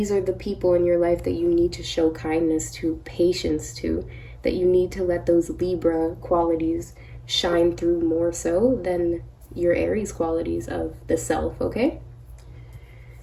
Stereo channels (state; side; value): identical; both; correlation 1.00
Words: are the people in your life that you need to show kindness to, patience to, that you need to let those Libra qualities shine through more so than your Aries qualities of the self, okay?